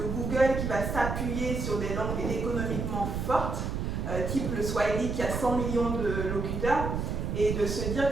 Google qui va s'appuyer sur des langues économiquement fortes, type le Swahili qui a 100 millions de locuteurs, et de se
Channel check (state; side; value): noise; right; rumble, 2 dB below the sound